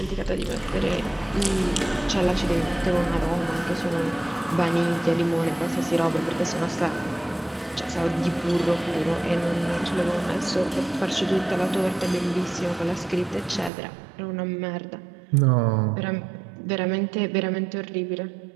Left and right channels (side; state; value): left; drops out; at 13.7 s